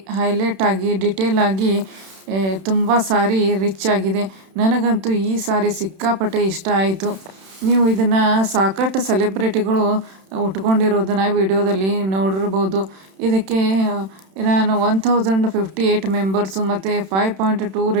ಹೈಲೈಟ್ ಆಗಿ, ಡಿಟೇಲ್ ಆಗಿ ತುಂಬ ಸ್ಯಾರಿ ರಿಚ್ ಆಗಿದೆ. ನನಗಂತೂ ಈ ಸ್ಯಾರಿ ಸಿಕ್ಕಾಪಟ್ಟೆ ಇಷ್ಟ ಆಯಿತು. ನೀವು ಇದನ್ನು ಸಾಕಷ್ಟು ಸೆಲೆಬ್ರಿಟಿಗಳು ಉಟ್ಕೊಂಡಿರೋದನ್ನು ವಿಡಿಯೋದಲ್ಲಿ ನೋಡಿರ್ಬೋದು. ಇದಕ್ಕೆ ನಾನು 1058 ಮೆಂಬರ್ಸು ಮತ್ತು 5.2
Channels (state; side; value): late; left; 31 ms